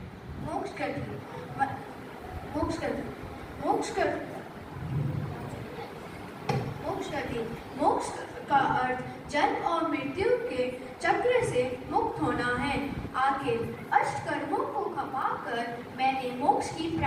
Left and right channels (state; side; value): identical; both; correlation 1.00